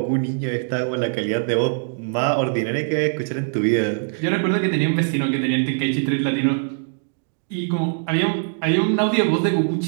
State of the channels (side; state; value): left; silent; digital silence